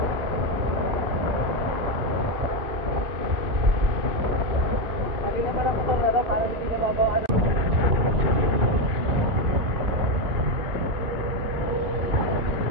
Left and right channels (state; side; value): late; left; 2.5 ms